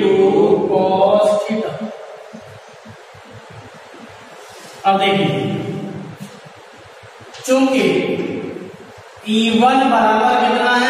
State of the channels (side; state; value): both; identical; correlation 1.00